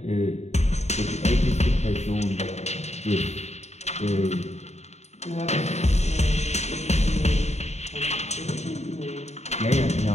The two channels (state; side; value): late; right; 0.32 ms